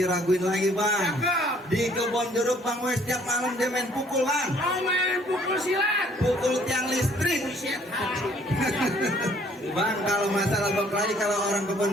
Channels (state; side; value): normal; both; correlation 0.60